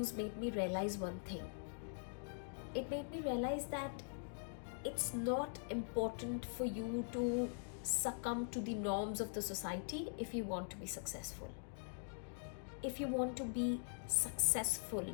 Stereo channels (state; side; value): silent; right; digital silence